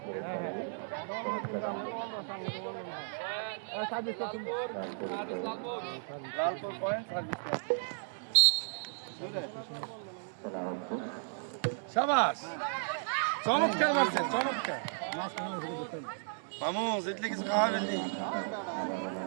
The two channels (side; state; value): left; silent; digital silence